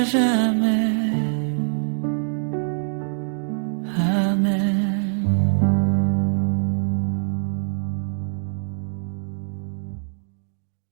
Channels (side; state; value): left; silent; digital silence